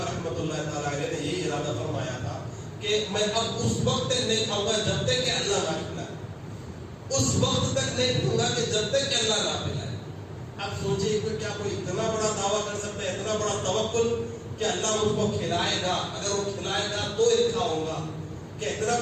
رحمۃ اللہ تعالیٰ علیہ نے یہ ارادہ فرمایا تھا کہ میں اب اس وقت تک نہیں کھاؤں گا جب تک کہ اللہ نہ کھلائے، اس وقت تک نہیں کھاؤں گا کہ جب تک کہ اللہ نہ پلائے۔ اب سوچئے کہ کیا کوئی اتنا بڑا دعویٰ کر سکتا ہے، اتنا بڑا توکل کہ اللہ مجھ کو کھلائے گا، اگر وہ کھلائے گا تو یہ کھاؤں گا، کہ اتنا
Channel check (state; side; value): identical; both; correlation 1.00